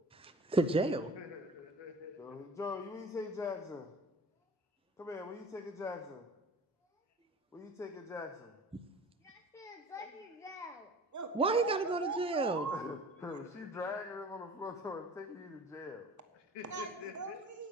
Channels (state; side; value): normal; both; correlation 0.43